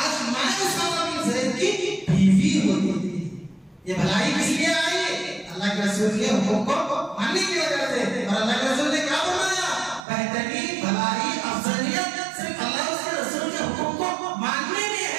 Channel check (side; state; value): left; drops out; at 10.1 s